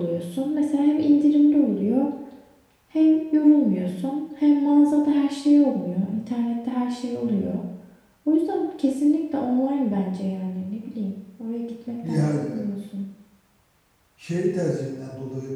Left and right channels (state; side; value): identical; both; correlation 1.00